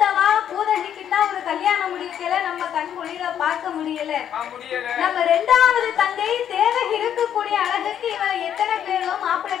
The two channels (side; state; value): right; quieter; 9.5 dB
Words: பூதகிக்குன்னா ஒரு கல்யாணம் முடிக்கல, நம்ம கண் மொழியில பார்க்க முடியல. நம்ம 2வது தங்கை தேவகி இருக்கக்கூடிய அழகுக்கு இவளை எத்தனை பேரோ மாப்பிள்ளை